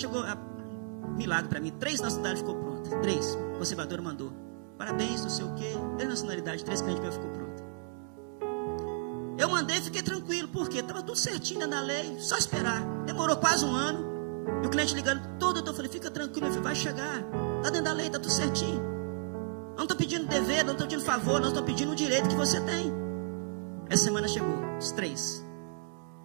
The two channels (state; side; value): silent; left; 56 dB below the other